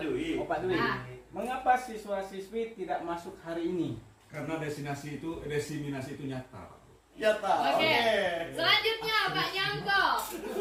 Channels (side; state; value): both; identical; correlation 1.00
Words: iya. Oh Pak Dwi. Ah. Mengapa siswa-siswi tidak masuk hari ini? Karena diseminasi itu nyata. Oke. Selanjutnya Pak Nyangko.